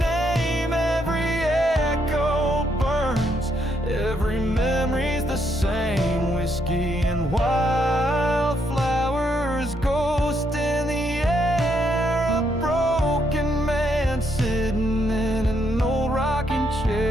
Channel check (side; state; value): both; normal; correlation 0.75